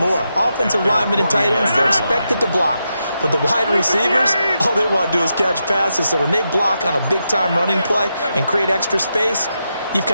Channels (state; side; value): inverted; both; correlation -0.85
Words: Offensive linemen and tight ends, they're expected to block. But the wide receivers, all they want to do is catch passes. So when they block on a big-time running play and create extra space, you've